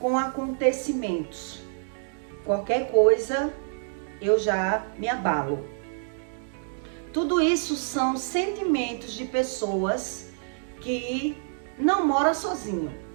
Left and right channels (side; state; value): left; silent; digital silence